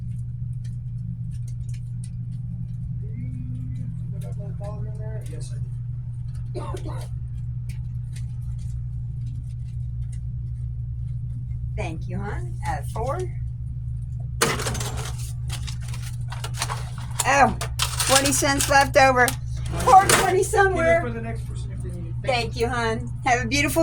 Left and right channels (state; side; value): identical; both; correlation 1.00